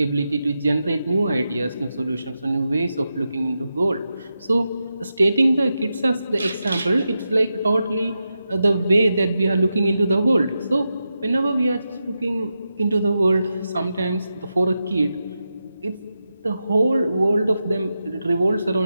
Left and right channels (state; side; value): inverted; both; correlation -0.89